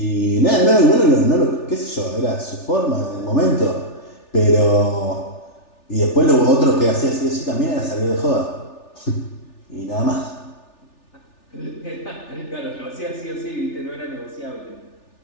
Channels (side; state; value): right; late; 3.4 ms